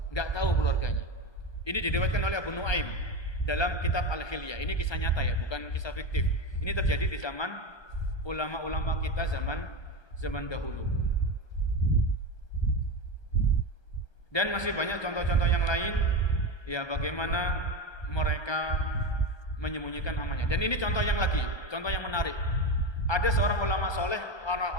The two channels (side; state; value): right; late; 1.3 ms